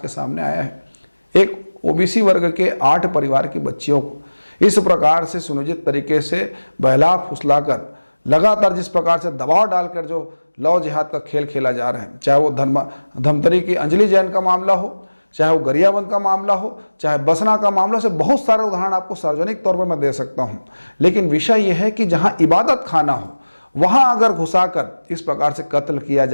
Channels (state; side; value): inverted; both; correlation -1.00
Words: सामने आया है। एक ओबीसी वर्ग के 8 परिवार की बच्चियों को इस प्रकार से सुनियोजित तरीके से बहला फुसलाकर लगातार जिस प्रकार से दबाव डालकर जो लव जिहाद का खेल खेला जा रहा है, चाहे वो धमतरी की अंजलि जैन का मामला हो, चाहे वो गरियाबंद का मामला हो, चाहे बसना का मामला, से बहुत सारे उदाहरण आपको सार्वजनिक तौर पर मैं दे सकता हूं। लेकिन विषय यह है कि जहां इबादत खाना हो वहां अगर घुसाकर इस प्रकार से कत्ल किया